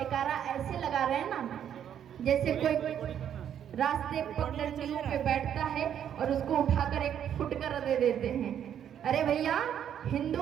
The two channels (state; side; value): quieter; left; 9.4 dB